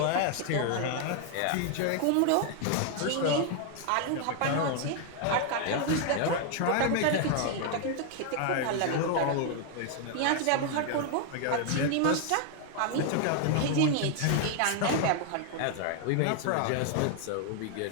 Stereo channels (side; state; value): both; different; correlation 0.00